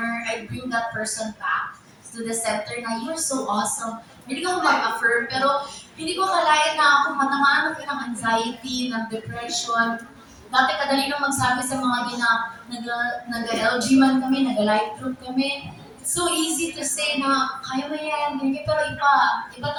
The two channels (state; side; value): identical; both; correlation 1.00